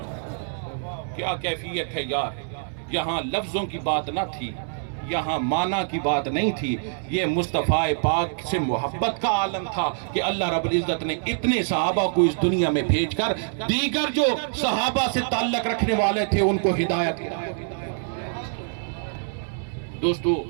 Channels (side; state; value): left; silent; 62 dB below the other